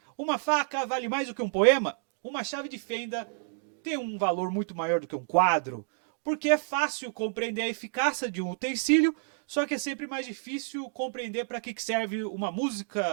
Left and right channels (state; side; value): silent; left; digital silence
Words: uma faca vale mais do que um poema, uma chave de fenda tem um valor muito maior do que um quadro, porque é fácil compreender a eficácia de um utensílio, só que é sempre mais difícil compreender para que serve uma